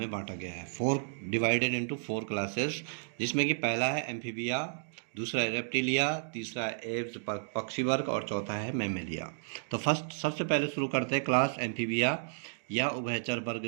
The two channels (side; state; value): left; silent; digital silence